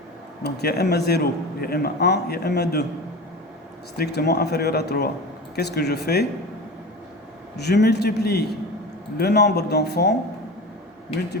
Donc il y a M0, il y a M1, il y a M2 strictement inférieur à 3. Qu'est-ce que je fais? Je multiplie le nombre d'enfants,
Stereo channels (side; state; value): both; normal; correlation 0.31